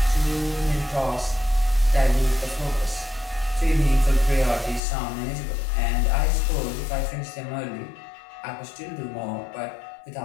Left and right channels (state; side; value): drops out; right; at 4.8 s